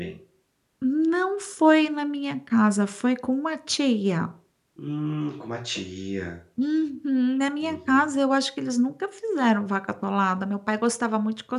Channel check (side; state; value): both; identical; correlation 1.00